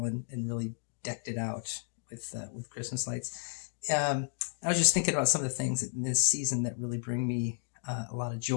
and really decked it out with Christmas lights. I was just thinking about some of the things in this season that really bring me a lot of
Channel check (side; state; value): right; silent; 56 dB below the other